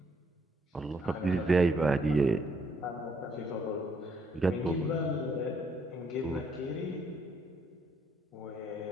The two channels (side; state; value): both; normal; correlation 0.70